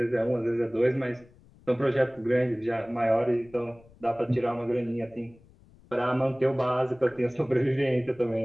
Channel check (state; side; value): noise; left; rumble, 27 dB below the sound